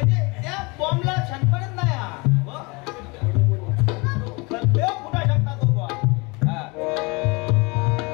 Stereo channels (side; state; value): right; quieter; 27.5 dB